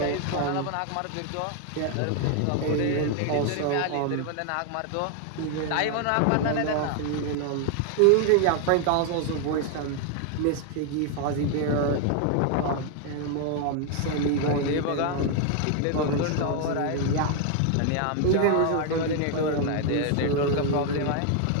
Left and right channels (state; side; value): different; both; correlation 0.00